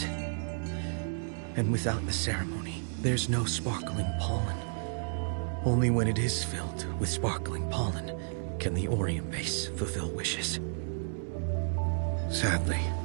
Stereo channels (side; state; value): left; silent; digital silence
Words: And without the ceremony, there's no sparkling pollen. Only when it is filled with sparkling pollen can the Orium vase fulfill wishes. Sadly,